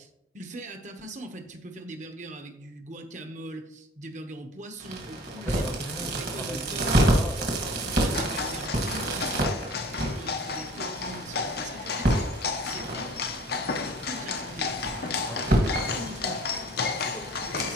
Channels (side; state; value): both; normal; correlation 0.48